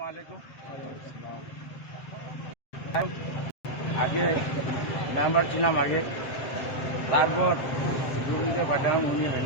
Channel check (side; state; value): right; late; 7.6 ms